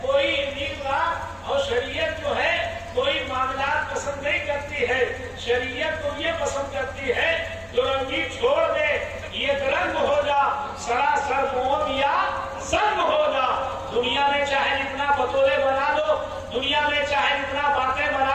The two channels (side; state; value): both; identical; correlation 1.00